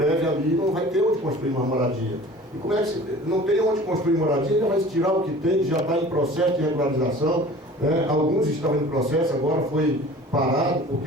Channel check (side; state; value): both; normal; correlation 0.44